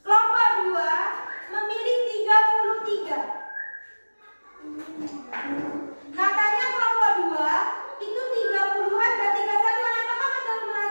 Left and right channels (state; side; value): inverted; both; correlation -1.00